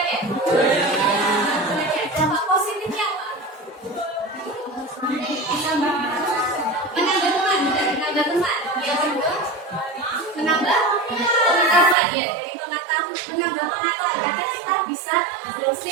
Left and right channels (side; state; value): left; drops out; at 12.0 s